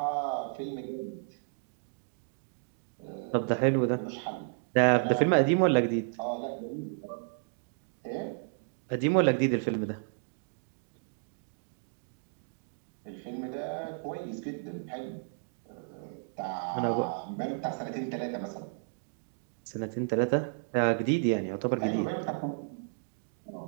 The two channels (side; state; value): left; silent; digital silence